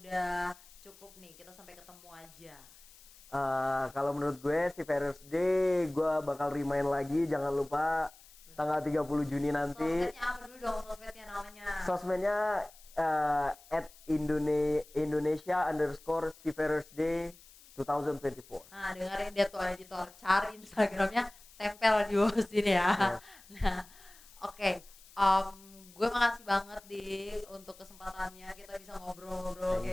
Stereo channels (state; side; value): noise; left; hiss, 23 dB below the sound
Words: cukup nih kita sampai ketemu aja? Kalau menurut gue si Faraday gue bakal remind lagi, jangan lupa tanggal 30 Juni nanti. Sosmednya apa dulu dong, sosmednya namanya? Sosmednya @Indonesia_Seafarersday 2024. Nah, dengerin dia tuh editor, cari Instagramnya, tempel di bawah sini ya. Nah, oke. Gue makasih banget untuk kesempatannya, kita bisa ngobrol-ngobrol